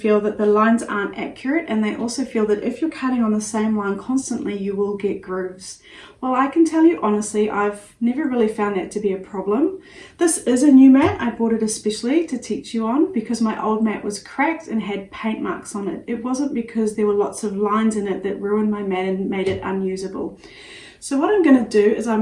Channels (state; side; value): identical; both; correlation 1.00